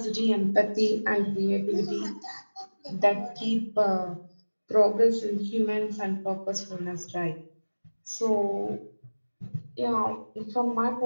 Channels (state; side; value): inverted; both; correlation -1.00